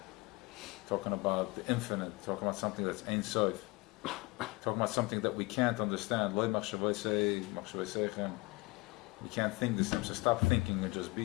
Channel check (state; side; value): quieter; right; 24.1 dB